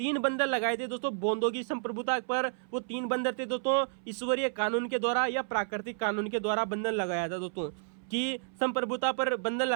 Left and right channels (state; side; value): silent; left; 57 dB below the other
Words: बंधन लगाए थे दोस्तों बोंदो की संप्रभुता पर, वो 3 बंधन थे दोस्तों ईश्वरीय कानून के द्वारा या प्राकृतिक कानून के द्वारा बंधन लगाया था दोस्तों। कि संप्रभुता पर बंधन